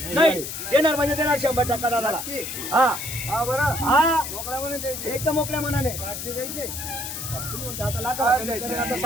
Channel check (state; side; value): noise; left; hiss, 7 dB below the sound